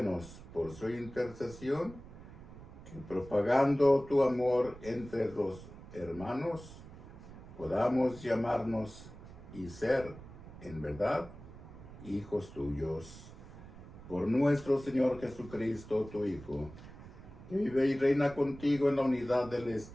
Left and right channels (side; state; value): right; noise; rumble, 16 dB below the sound